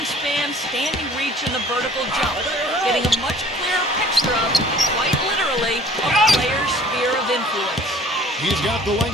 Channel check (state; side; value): normal; both; correlation 0.51